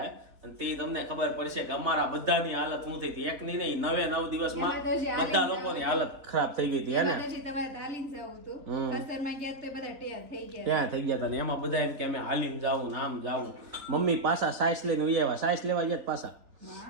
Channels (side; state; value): left; late; 3.6 ms